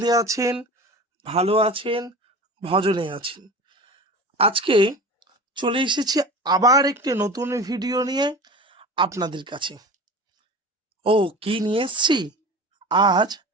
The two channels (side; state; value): both; normal; correlation 0.35